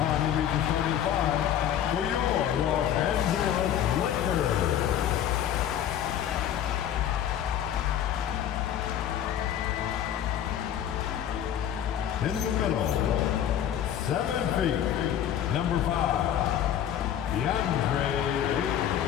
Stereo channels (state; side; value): quieter; right; 10.2 dB